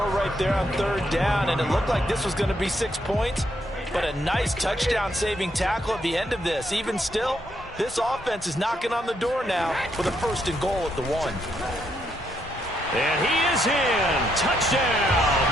right there on 3rd down, and it looked like this was going to be 6 points, but a nice touchdown-saving tackle at the end of this. Even still, this offense is knocking on the door now with a 1st and goal at the 1. And he is in. Touchdown,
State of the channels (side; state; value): both; normal; correlation 0.76